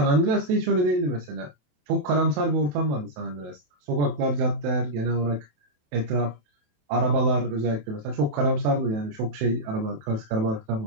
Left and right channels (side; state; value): left; late; 27 ms